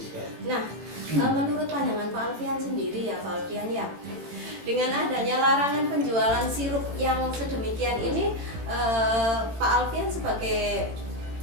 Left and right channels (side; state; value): left; late; 18 ms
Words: Nah, menurut pandangan Pak Alfian sendiri ya Pak Alfian ya, dengan adanya larangan penjualan sirup yang sedemikian ini, Pak Alfian sebagai